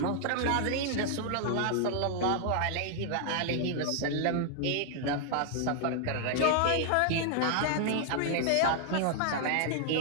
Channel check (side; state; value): both; different; correlation 0.00